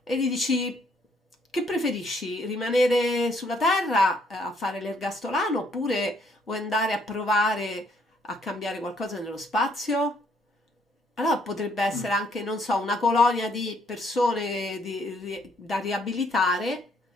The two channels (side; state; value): both; normal; correlation 0.68